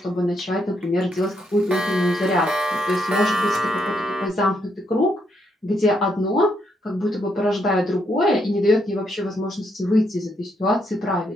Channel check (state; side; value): normal; both; correlation 0.76